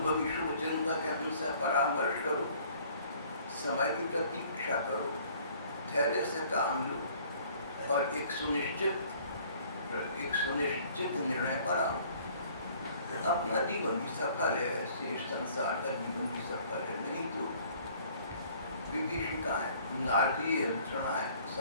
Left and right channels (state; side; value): inverted; both; correlation -0.56